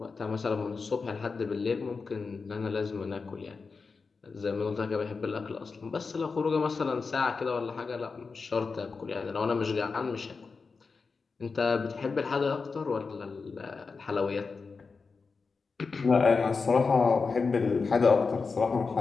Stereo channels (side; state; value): right; quieter; 4.7 dB